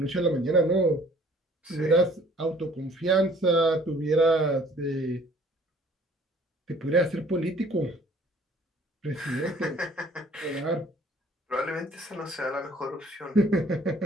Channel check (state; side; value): normal; both; correlation 0.55